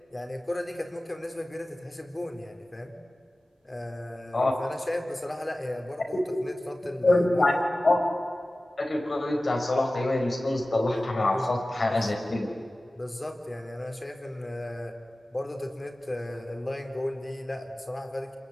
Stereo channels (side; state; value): both; normal; correlation 0.97